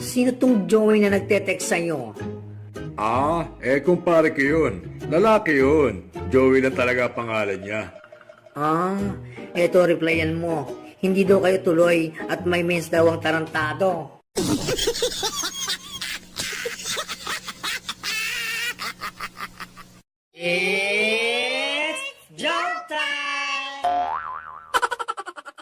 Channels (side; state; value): both; identical; correlation 1.00